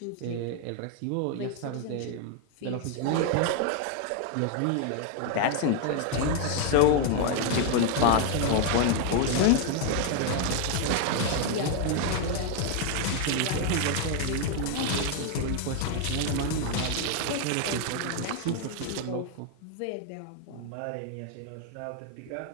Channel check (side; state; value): both; different; correlation 0.01